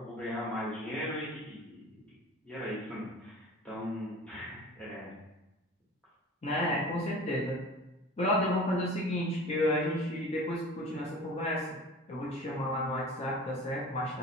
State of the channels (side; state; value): both; normal; correlation 0.40